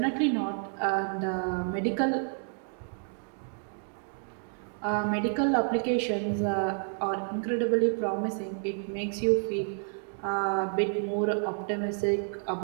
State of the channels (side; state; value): left; silent; 58 dB below the other